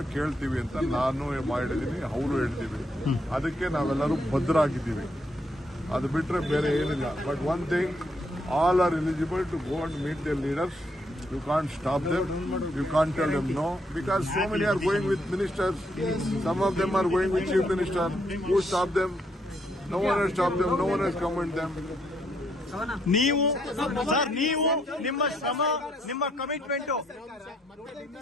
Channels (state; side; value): normal; both; correlation 0.74